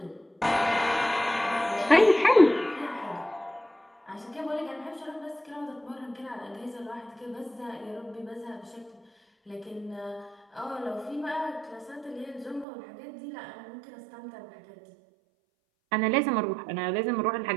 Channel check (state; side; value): drops out; left; at 12.7 s